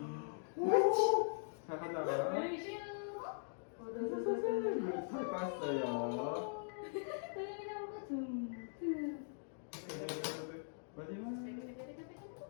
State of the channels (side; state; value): right; silent; digital silence